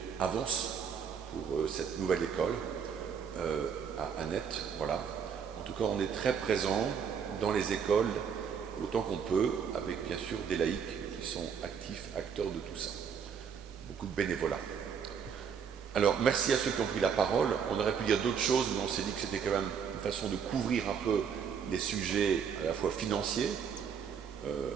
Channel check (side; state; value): left; quieter; 7.0 dB